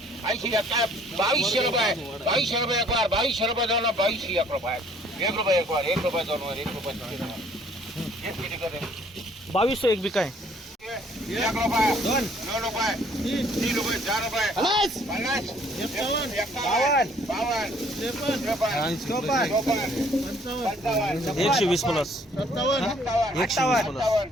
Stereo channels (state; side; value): normal; both; correlation 0.60